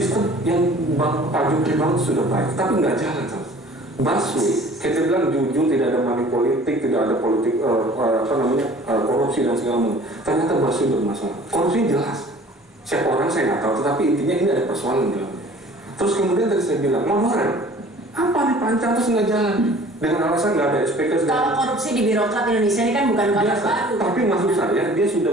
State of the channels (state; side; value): normal; both; correlation 0.49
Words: yang Pak Jokowi bangun sudah baik, tapi nggak jalan sama. Baswe, kita bilang jujur, tidak ada money politik, tidak ada politik korupsi dan segala macam. Ternyata Baswe bermasalah. Korupsi jelas. Siapa orang saya nggak tahu, tetapi intinya ini ada persoalan dalam. Terus kemudian tadi saya bilang, monorer, apa nih pancang terus nggak jalan? Dengan alasan nggak ada SPK. Kalau korupsi di birokrat Indonesia ini kan bukan kasus baru. Tapi maksud saya, dia